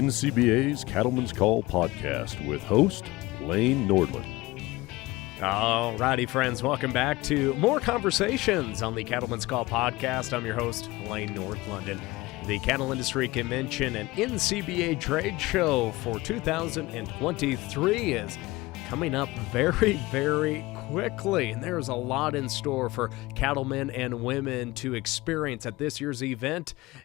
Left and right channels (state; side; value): quieter; right; 20.5 dB